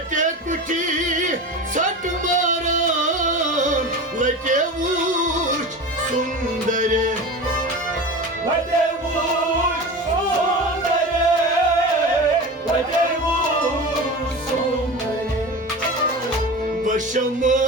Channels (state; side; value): normal; both; correlation 0.30